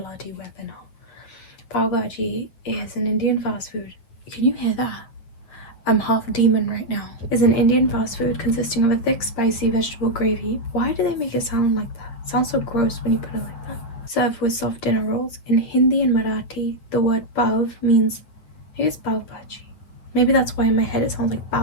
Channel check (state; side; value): late; right; 8.9 ms